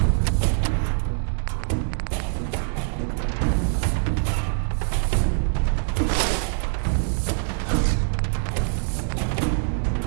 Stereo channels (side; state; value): left; silent; digital silence